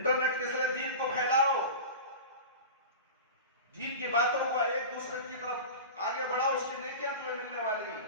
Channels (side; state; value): both; inverted; correlation -0.31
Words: کے ذریعے دین کو پھیلاؤ، دین کی باتوں کو ایک دوسرے کی طرف آگے بڑھاؤ، اس کی نیکیاں تمہیں ملنے والی ہیں۔